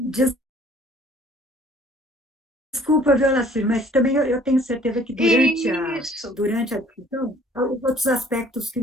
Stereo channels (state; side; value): normal; both; correlation 0.56